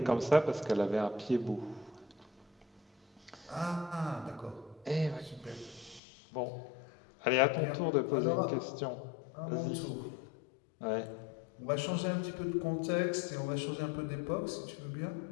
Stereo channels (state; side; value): drops out; right; at 6.0 s